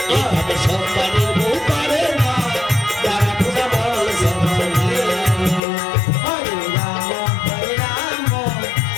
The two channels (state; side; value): drops out; right; at 5.6 s